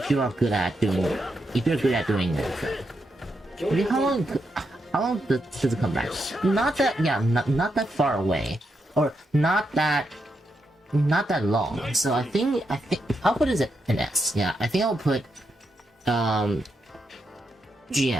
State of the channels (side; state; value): both; normal; correlation 0.83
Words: doing it. I mean, how long does it come back? Not that far away. Or not that long. So I think I'll put it an S. Yeah, I think I'll put GM